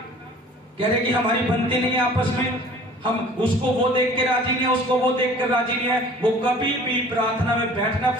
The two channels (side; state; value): both; normal; correlation 0.48